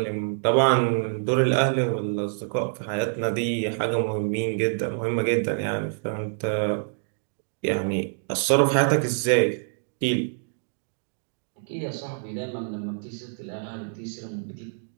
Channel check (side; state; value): left; silent; digital silence